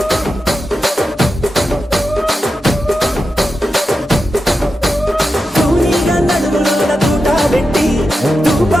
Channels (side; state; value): both; normal; correlation 0.89